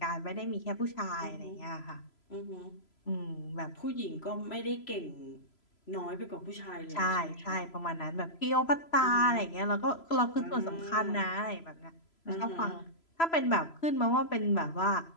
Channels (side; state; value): right; late; 3.0 ms